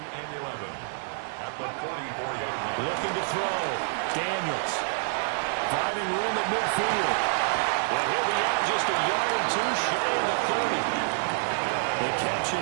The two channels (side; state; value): left; silent; 60 dB below the other